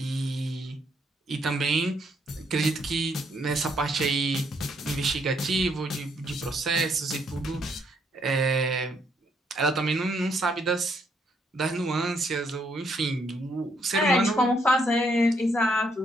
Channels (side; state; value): both; normal; correlation 0.72